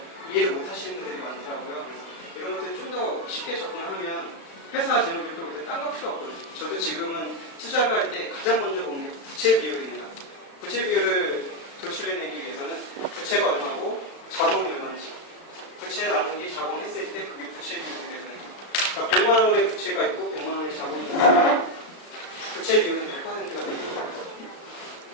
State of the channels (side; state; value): right; late; 36 ms